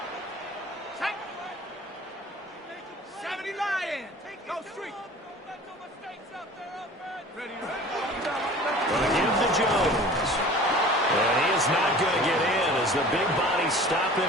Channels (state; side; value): normal; both; correlation 0.43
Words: Jones. And he is not going to get in as the big body stop